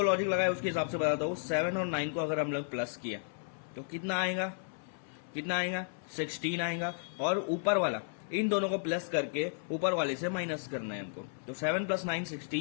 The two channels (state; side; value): silent; right; 55 dB below the other